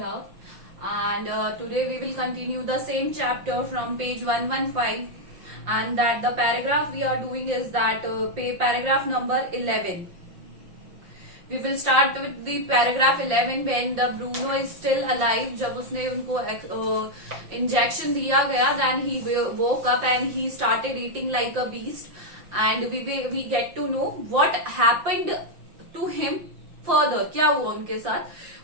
and today we will continue the same chapter from page 115. And that the paragraph we are doing is that paragraph number 11. We will start with the paragraph 11 when the Bruno is still alive. जब उसने उनको injection दिया गया, then he woke up and he started eating like a beast. And we get to know what happened to him further. क्या हुआ उनके साथ?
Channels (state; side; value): late; left; 5.7 ms